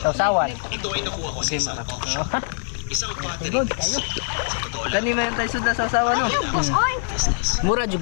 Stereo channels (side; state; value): right; silent; digital silence